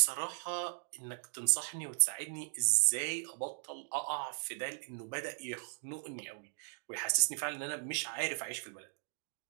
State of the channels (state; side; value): silent; left; 53 dB below the other